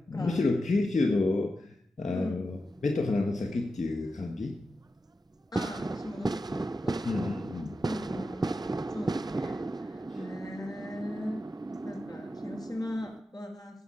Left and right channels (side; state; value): both; normal; correlation 0.90